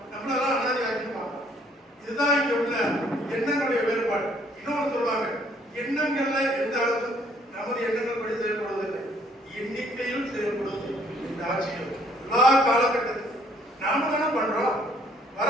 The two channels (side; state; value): both; normal; correlation 0.63